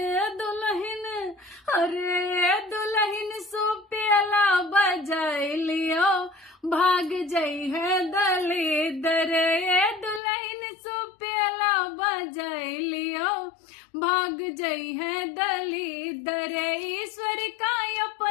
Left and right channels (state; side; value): drops out; right; at 10.2 s